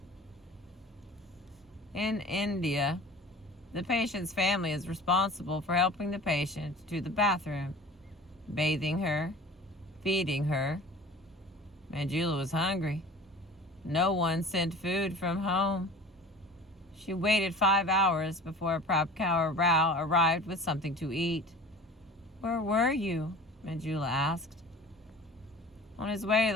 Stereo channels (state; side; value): normal; both; correlation 0.41